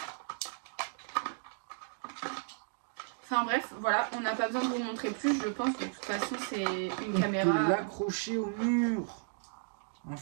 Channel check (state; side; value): silent; left; digital silence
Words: Enfin bref, voilà, on n'a pas besoin de vous montrer plus, je pense que de toute façon c'est une caméra. On peut l'accrocher au mur, en